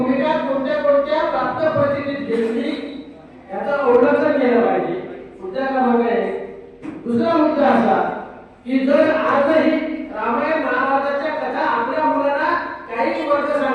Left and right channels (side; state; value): both; identical; correlation 1.00